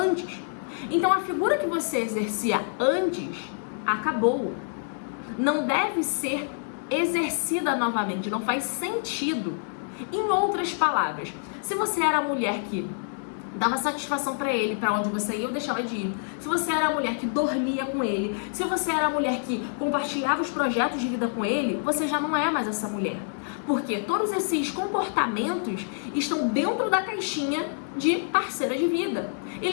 Então a figura que você exercia antes acabou. Não deve ser exercida novamente, não faz sentido. Em outras palavras, se você era a mulher que dava satisfação pra ele, pra onde você ia ou deixava de ir, se você era a mulher que dormia com ele, se você era a mulher que compartilhava os projetos de vida com ele, você já não é mais essa mulher. Porque todos esses comportamentos estão dentro da caixinha de parceira de vida. E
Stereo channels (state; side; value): silent; right; digital silence